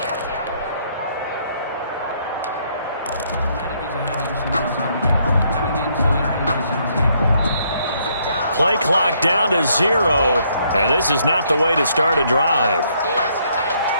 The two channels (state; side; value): inverted; both; correlation -0.70